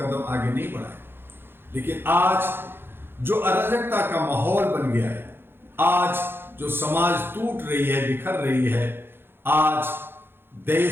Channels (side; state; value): left; late; 0.10 ms